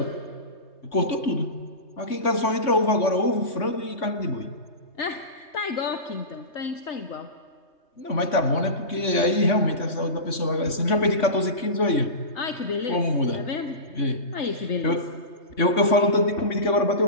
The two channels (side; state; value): right; late; 3.6 ms